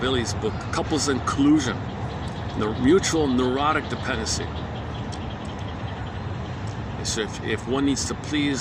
Billy's book, Couples in Collusion, the mutual neurotic dependency. So if one needs to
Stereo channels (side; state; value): both; identical; correlation 1.00